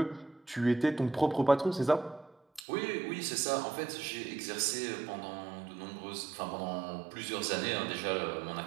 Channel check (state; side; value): drops out; left; at 2.7 s